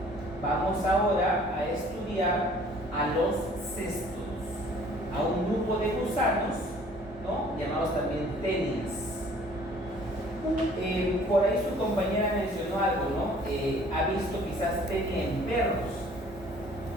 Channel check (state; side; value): normal; both; correlation 0.54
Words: Vamos ahora a estudiar a los cestos, a un grupo de gusanos, ¿no? Llamados también tenias. Por ahí su compañera mencionó algo, ¿no? Ha visto quizás tenia en perros.